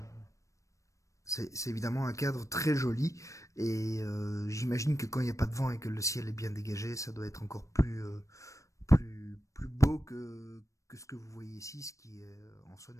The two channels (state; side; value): late; right; 0.15 ms